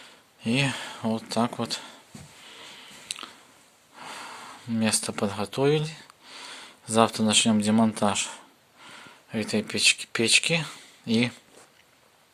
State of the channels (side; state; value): both; identical; correlation 1.00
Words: И вот так вот место подготовили. Завтра начнем демонтаж этой печки и,